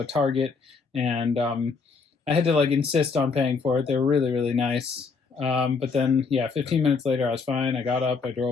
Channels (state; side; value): quieter; right; 4.9 dB